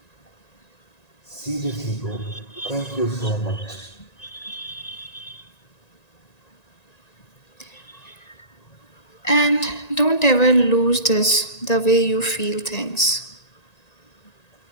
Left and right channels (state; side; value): late; right; 1.9 ms